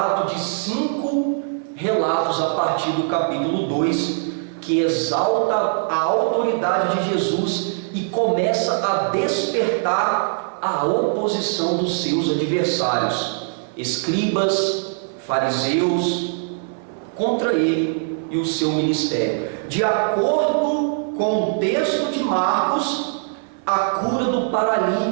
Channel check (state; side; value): silent; left; 62 dB below the other